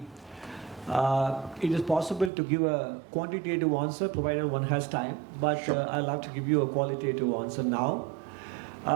it is possible to give a quantitative answer provided one has time, but Sure. I'll have to give you a qualitative answer now.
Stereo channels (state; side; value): drops out; left; at 2.3 s